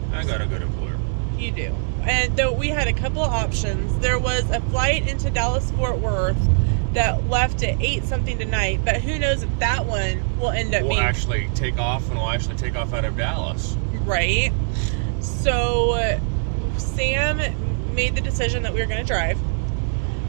I got a good employer. You do. And though we had a couple of options, there was a flight into Dallas-Fort Worth that left at 8 something tonight, but who knows if that one will end up We'll being... actually take off, and we'll actually take off out of Dallas. Right. So Sam made the decision that we were going to drive.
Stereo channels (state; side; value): silent; left; digital silence